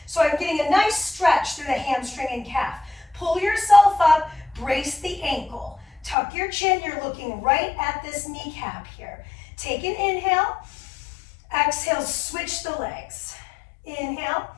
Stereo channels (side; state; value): right; drops out; at 6.2 s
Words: So I'm getting a nice stretch through the hamstring and calf. Pull yourself up. Brace the ankle. Tuck your chin. You're looking right at this kneecap here. Take an inhale. Exhale, switch the legs. Inhale.